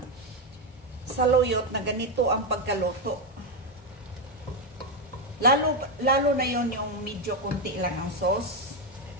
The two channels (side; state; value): both; normal; correlation 0.06